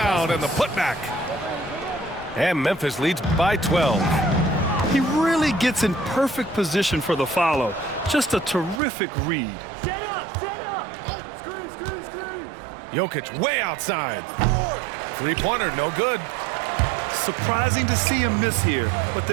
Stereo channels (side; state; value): left; drops out; at 8.8 s